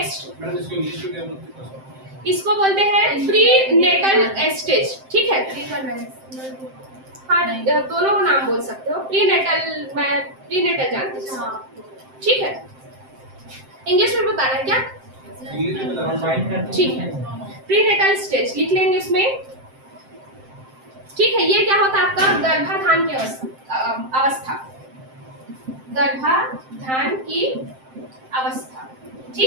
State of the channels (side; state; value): left; late; 7.7 ms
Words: इसको बोलते हैं प्री नेटल स्टेज। ठीक है, हाँ दोनों नाम बोल सकते हो, प्री नेटल, मैं प्री नेटल जानती हूँ। ठीक है, इंग्लिश में बताना है क्या, ठीक है, प्री नेटल स्टेज लिख लेंगे इसमें। ठीक है, ये क्या होता है आपका, गर्भाधान की अवस्था, गर्भाधान की अवस्था।